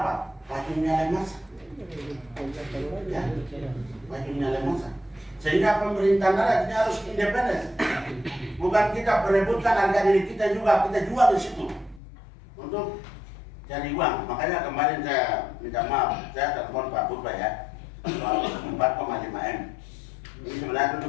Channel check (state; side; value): drops out; right; at 12.0 s